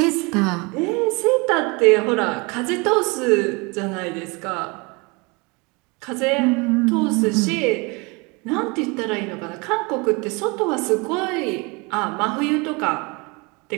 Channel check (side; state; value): left; quieter; 28.0 dB